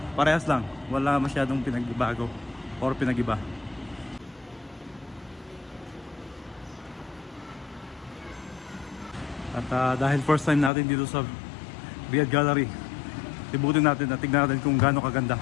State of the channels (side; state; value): right; drops out; at 10.7 s